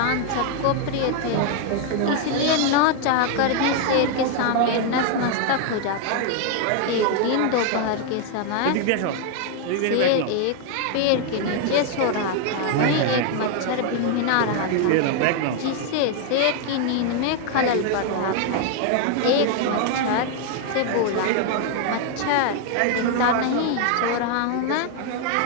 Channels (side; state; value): both; different; correlation 0.01